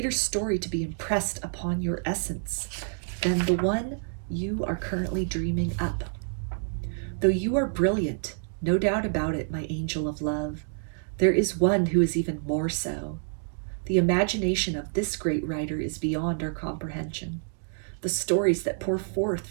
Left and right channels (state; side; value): silent; left; digital silence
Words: story to be impressed upon your essence than the one you are currently dreaming up. Though you are brilliant, no doubt about it, my angel of love, there is one who is even more so. The imagination of this great writer is beyond our comprehension. The stories that pour forth